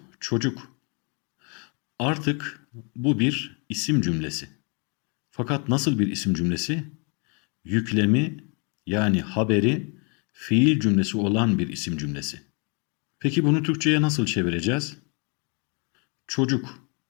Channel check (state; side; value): quieter; right; 35.5 dB